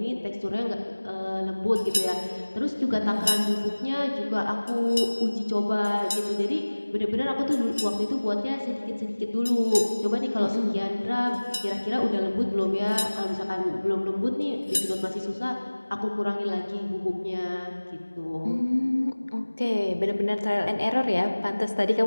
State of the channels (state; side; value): inverted; both; correlation -1.00